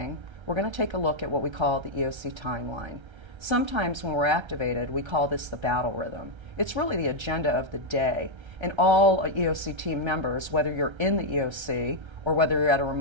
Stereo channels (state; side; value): late; left; 1.3 ms